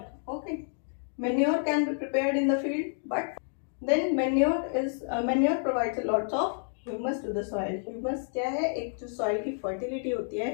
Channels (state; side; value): silent; right; digital silence